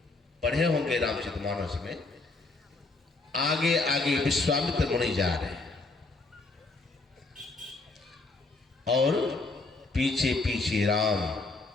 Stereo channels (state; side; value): quieter; right; 3.4 dB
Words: पढ़े होंगे रामचरितमानस में, आगे आगे विश्वामित्र मुनि जा रहे हैं और पीछे पीछे राम